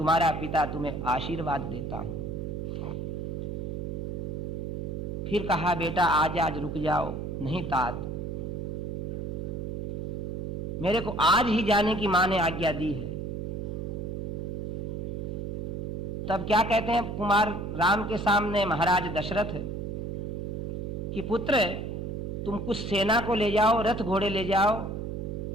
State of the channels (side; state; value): right; noise; hum, 4 dB below the sound